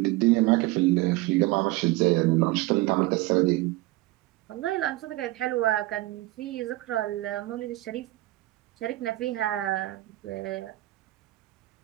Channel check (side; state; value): left; quieter; 19.0 dB